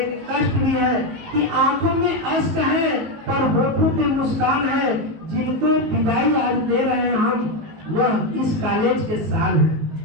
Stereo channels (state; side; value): late; left; 19 ms